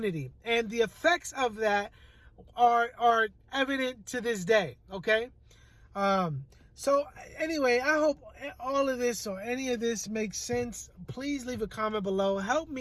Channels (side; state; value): both; identical; correlation 1.00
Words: and the effects of that are evident to this day. Okay, so anyway, I hope all of this or any of this makes sense. Please leave a comment below. Help